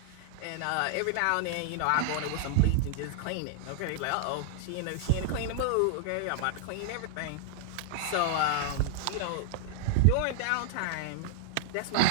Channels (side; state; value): both; different; correlation 0.00